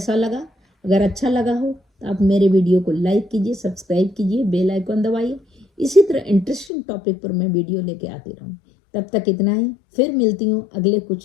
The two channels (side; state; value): right; drops out; at 6.7 s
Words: लगा? अगर अच्छा लगा हो तो आप मेरे वीडियो को लाइक कीजिए, सब्सक्राइब कीजिए, बेल आइकन दबाइए। इसी तरह इंटरेस्टिंग टॉपिक पर मैं वीडियो लेके आती रहूँ। तब तक इतना ही, फिर मिलती हूँ अगले